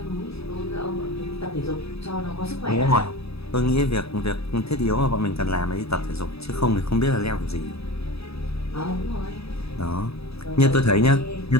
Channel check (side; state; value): right; late; 0.78 ms